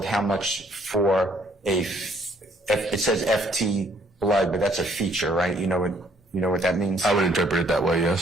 how much for it says FT blood, but that's a feature, right? You know what that means? I would interpret it that way,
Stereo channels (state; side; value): normal; both; correlation 0.64